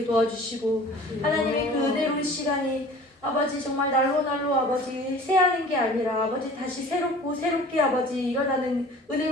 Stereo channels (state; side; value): normal; both; correlation 0.45